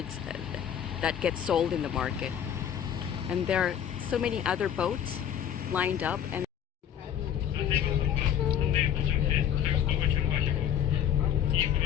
that get sold in the market. And there are so many other boats lined up. And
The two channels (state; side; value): quieter; right; 9.5 dB